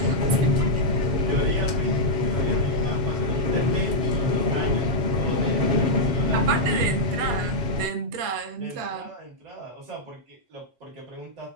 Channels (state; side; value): late; left; 8.3 ms